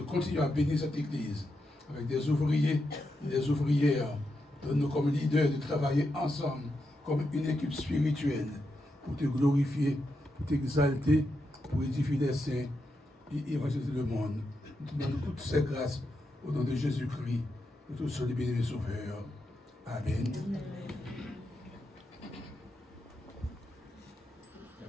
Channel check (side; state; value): both; normal; correlation 0.85